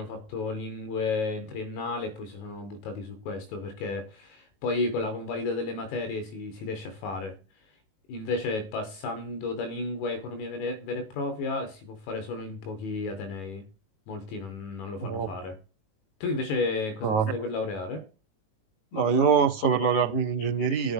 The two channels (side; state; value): right; late; 18 ms